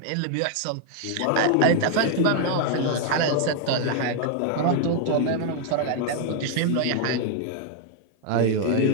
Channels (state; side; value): different; both; correlation 0.00